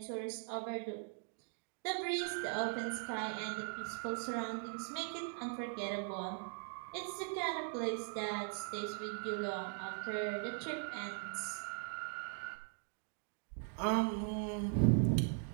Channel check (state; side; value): silent; left; 51 dB below the other